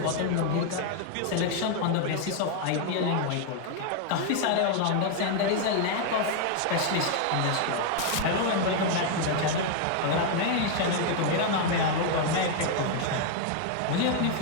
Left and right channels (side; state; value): both; different; correlation 0.00